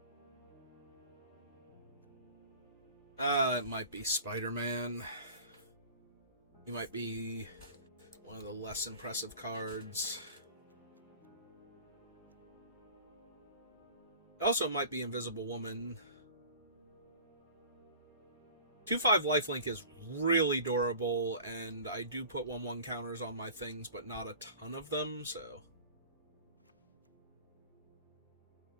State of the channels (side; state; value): both; inverted; correlation -0.42